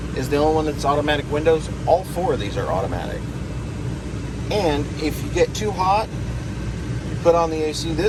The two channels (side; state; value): both; identical; correlation 1.00